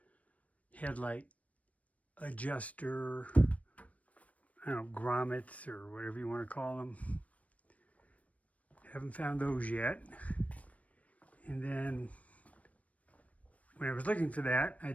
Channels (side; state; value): right; late; 0.067 ms